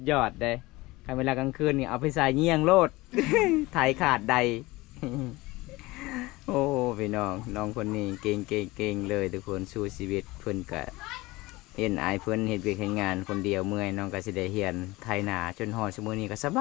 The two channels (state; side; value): quieter; right; 20.8 dB